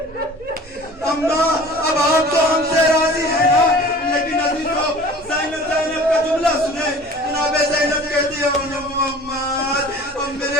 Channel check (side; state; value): both; normal; correlation 0.44